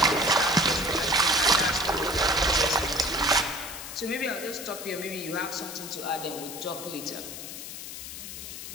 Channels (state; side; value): noise; left; hiss, 10 dB below the sound